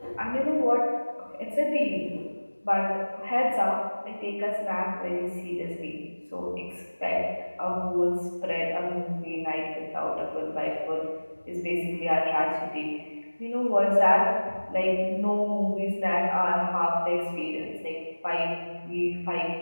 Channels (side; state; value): both; inverted; correlation -1.00